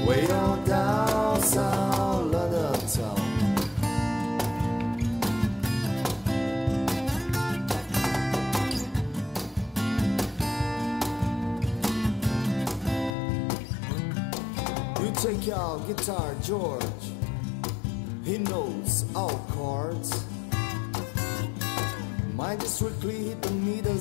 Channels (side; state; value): right; drops out; at 13.2 s